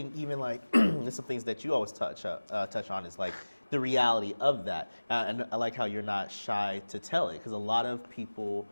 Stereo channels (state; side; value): inverted; both; correlation -1.00